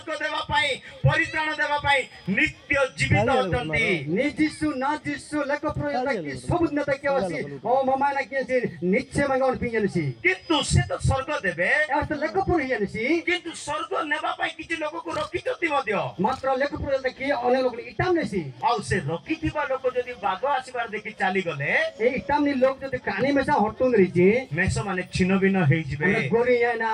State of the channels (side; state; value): both; identical; correlation 1.00